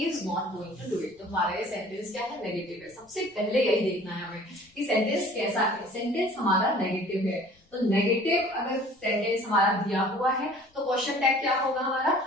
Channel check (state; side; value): normal; both; correlation 0.49